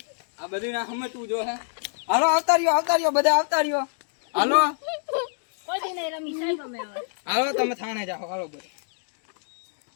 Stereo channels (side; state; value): right; silent; digital silence